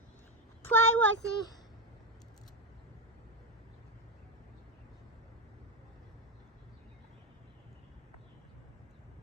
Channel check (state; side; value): normal; both; correlation 0.10